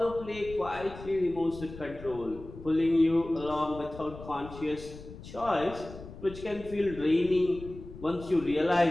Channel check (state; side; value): noise; left; rumble, 15 dB below the sound